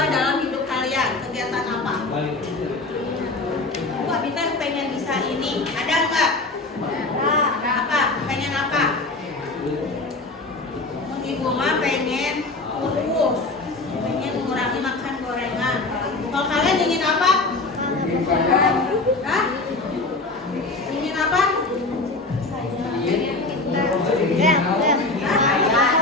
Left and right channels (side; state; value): right; quieter; 3.3 dB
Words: dalam hidup kalian. Kegiatan apa? Wah, Bintang pengen bisa ini. Ada nggak? Apa? Pengen apa? Ibu mah pengen kurus, pengen mengurangi makan gorengan. Kalau kalian ingin apa? Hah? Ingin apa?